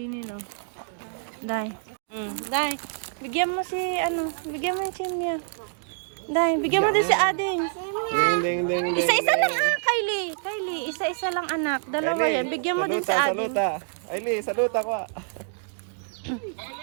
o. Day. Day. Bigyan mo si, bigyan mo yung chimney. Day, bigyan mo din si Ading. Isa-isa lang, Kylie. Kylie, isa-isa lang, anak. Dalawa yan. Bigyan mo din si Ading. Kylie, saluta ko.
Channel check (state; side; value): silent; left; digital silence